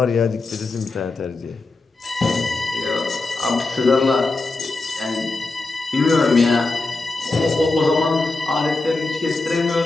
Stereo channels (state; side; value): quieter; right; 3.4 dB